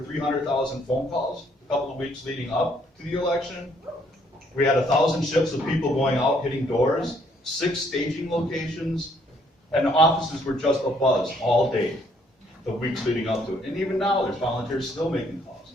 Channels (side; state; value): both; normal; correlation 0.67